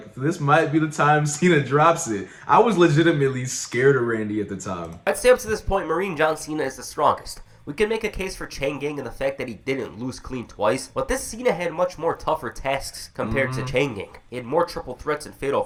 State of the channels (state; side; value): identical; both; correlation 1.00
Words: this might be the time Cena drops it. I was legitimately scared of Randy at the time. I'd say up to this point, Marine John Cena is the strongest. We can make a case for Chang Gang and the fact that he didn't lose clean twice, but this Cena had much more tougher tasks compared to Chang Gang. He had more triple threats and